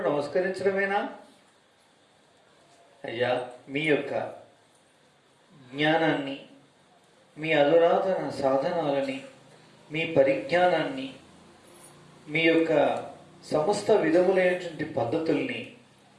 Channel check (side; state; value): both; identical; correlation 1.00